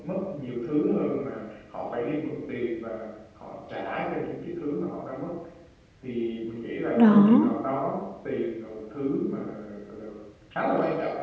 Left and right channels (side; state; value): both; identical; correlation 1.00